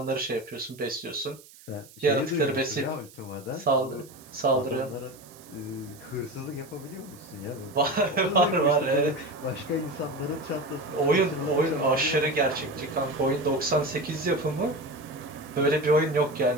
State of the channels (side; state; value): right; noise; hiss, 22 dB below the sound